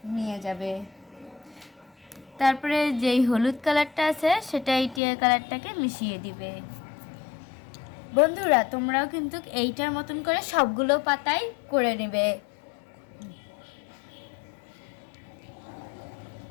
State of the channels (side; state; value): right; drops out; at 5.0 s